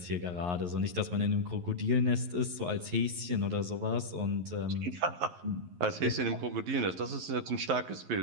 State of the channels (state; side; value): late; left; 11 ms